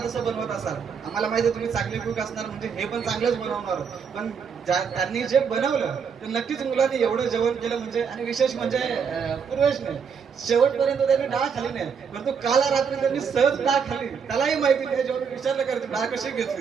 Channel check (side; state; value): left; quieter; 6.5 dB